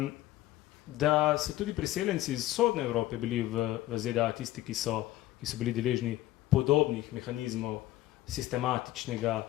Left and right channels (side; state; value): right; quieter; 15.3 dB